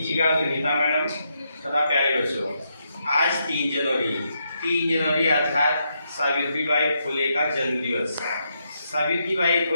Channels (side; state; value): both; inverted; correlation -0.80